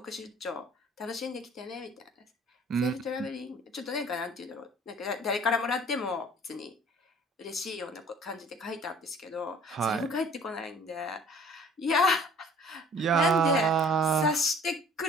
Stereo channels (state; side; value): normal; both; correlation 0.52